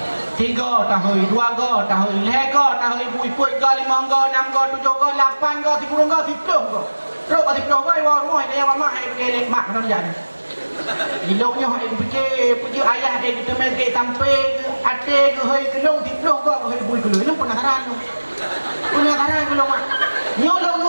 3 tahun, 2 go tahun, 5 go tahun, bui put go 5 go, 6 go, 7 go, 8 go, 10 go, 10 go. Terus 10 go wah rumah dia mama ai pergi lek mak kan jadi. Iloknya ai pergi ayah dia kita main ke tampe ke ate ke hoi kelong 10 go hoi bui kelong. Ini penasaran tu. Penasaran kelong mak. Nyolong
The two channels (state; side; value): inverted; both; correlation -1.00